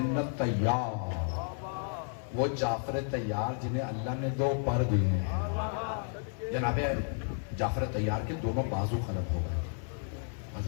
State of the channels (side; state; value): right; silent; 56 dB below the other